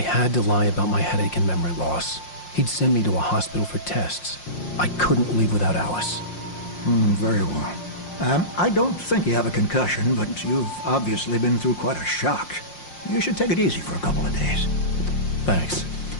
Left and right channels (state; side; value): late; right; 5.6 ms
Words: to lie about my headache and memory loss. He'd send me to a hospital for tests. I couldn't leave without Alice. Very well. I don't think you have a concussion, but you've obviously been through quite a shock. You should take it easy for a couple of days. Thanks.